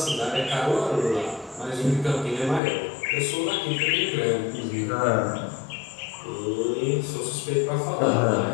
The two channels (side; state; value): right; drops out; at 2.6 s